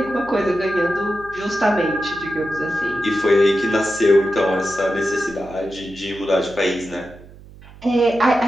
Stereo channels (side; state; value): right; noise; hum, 20 dB below the sound